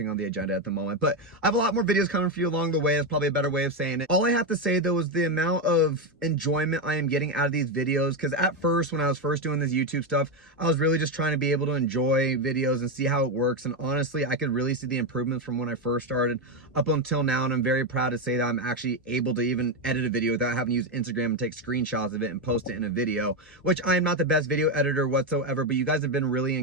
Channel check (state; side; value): normal; both; correlation 0.08